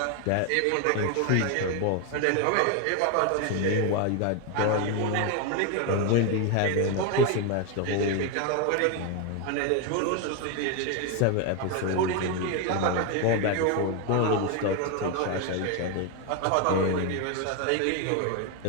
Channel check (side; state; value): both; different; correlation 0.01